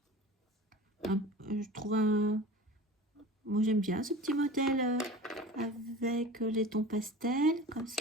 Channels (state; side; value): normal; both; correlation 0.37